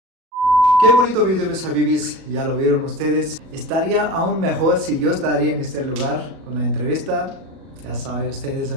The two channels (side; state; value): left; late; 37 ms